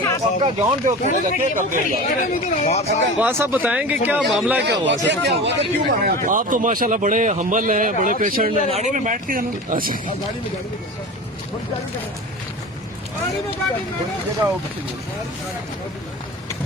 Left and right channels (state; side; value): normal; both; correlation 0.33